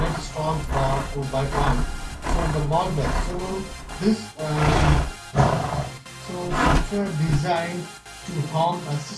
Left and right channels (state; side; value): identical; both; correlation 1.00